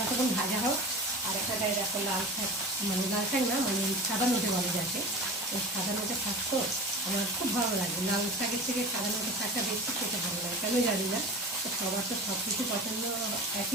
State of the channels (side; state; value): both; normal; correlation 0.35